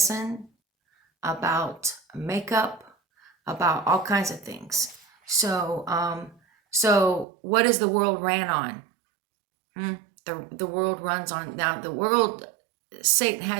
about makeup, about all kinds of things. So what is the world ran on? The world runs on, now the world, Satan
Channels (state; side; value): drops out; left; at 7.2 s